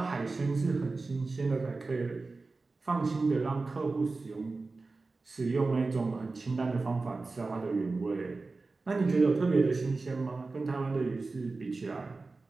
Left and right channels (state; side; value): quieter; left; 3.7 dB